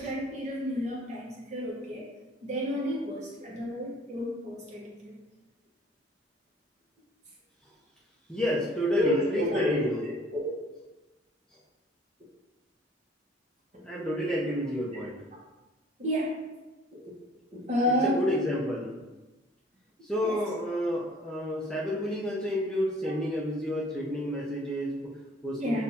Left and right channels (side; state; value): both; normal; correlation 0.53